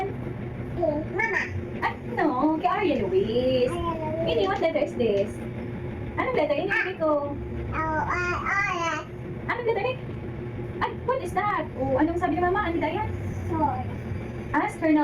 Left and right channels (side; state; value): both; identical; correlation 1.00